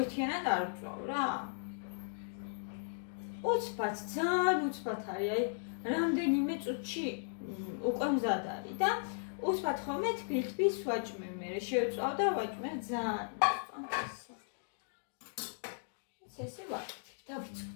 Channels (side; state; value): right; silent; digital silence